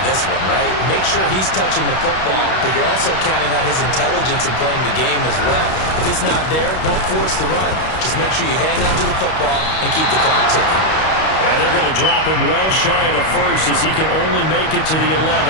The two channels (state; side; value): late; right; 32 ms